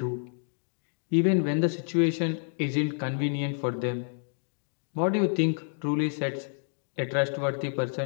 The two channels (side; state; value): right; silent; digital silence